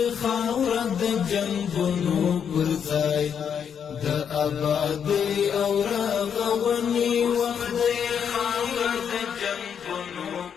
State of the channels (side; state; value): right; quieter; 7.7 dB